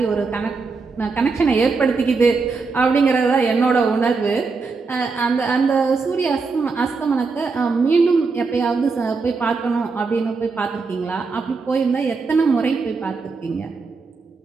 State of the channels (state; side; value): quieter; left; 4.4 dB